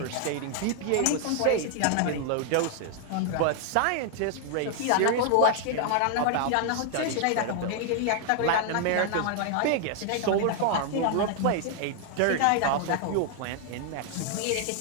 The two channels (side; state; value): both; different; correlation 0.00